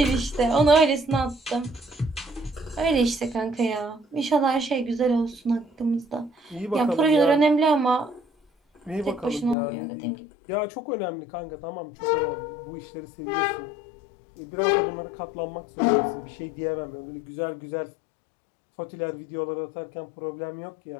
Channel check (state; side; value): drops out; right; at 9.6 s